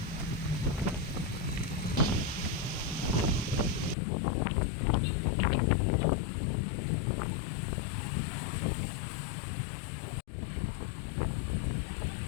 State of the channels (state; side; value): drops out; right; at 4.0 s